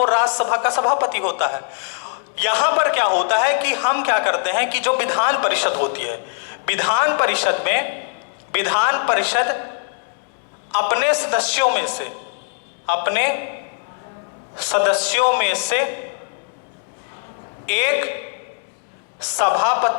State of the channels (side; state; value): right; silent; 65 dB below the other